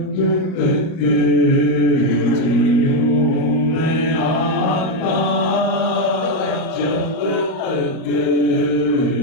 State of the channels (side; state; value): right; late; 38 ms